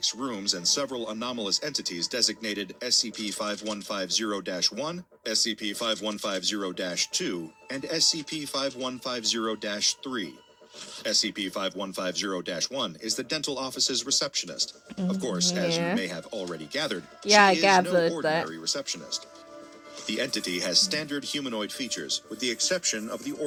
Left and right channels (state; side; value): identical; both; correlation 1.00